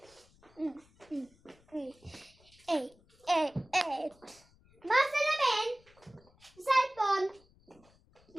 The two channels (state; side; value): noise; left; rumble, 29 dB below the sound